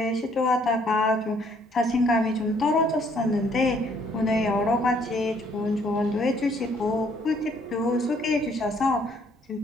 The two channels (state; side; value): normal; both; correlation 0.64